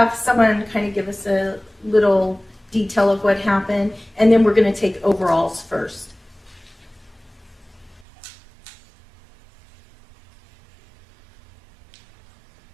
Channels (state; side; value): drops out; left; at 8.1 s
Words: someone kind of give us a little detail of what happened, and then we're going to take overalls first.